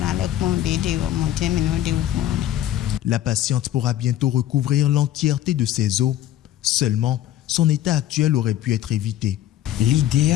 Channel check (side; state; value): right; quieter; 12.4 dB